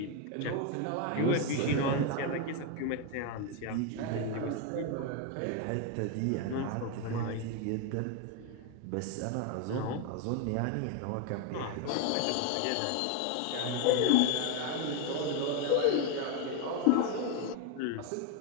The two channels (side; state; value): both; different; correlation 0.01